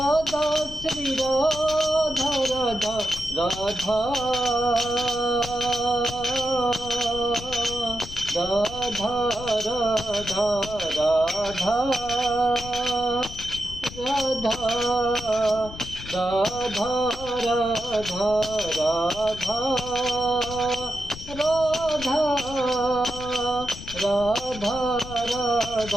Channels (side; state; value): left; noise; rumble, 12 dB below the sound